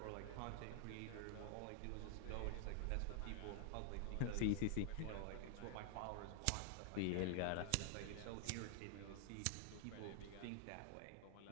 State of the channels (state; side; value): different; both; correlation 0.00